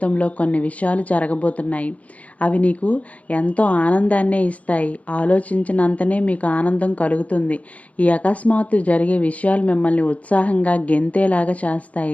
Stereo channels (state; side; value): late; right; 0.067 ms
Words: కొన్ని విషయాలు జరగబోతున్నాయి. అవి నీకు ఎంతో ఆనందాన్నే ఇస్తాయి. ఆలోచించినంతనే మీకు ఆనందం కలుగుతుంది. ఈ అకస్మాత్తు జరిగే విషయాలు మిమ్మల్ని ఉత్సాహంగా గెంతేలాగా